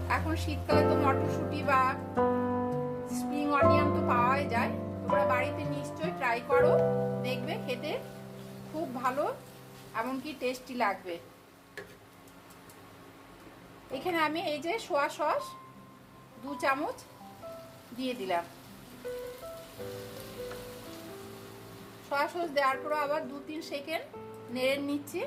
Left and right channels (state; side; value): identical; both; correlation 1.00